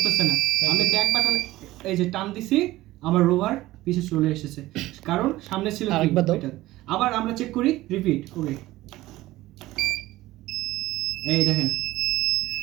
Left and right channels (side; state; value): left; quieter; 17.1 dB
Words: না। আমি ব্যাক বাটন এই যে টান দিছি, আমার রোভার পিছে চলে এসেছে, কারণ সামনে ছিল এটা। আবার আমরা চেক করি, রিপিট করি। এই দেখেন